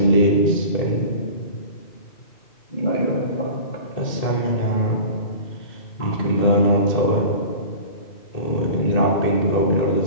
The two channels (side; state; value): right; late; 1.9 ms